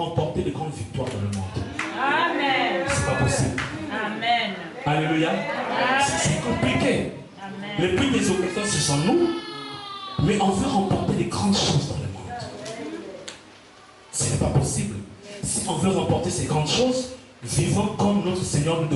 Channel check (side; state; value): both; identical; correlation 1.00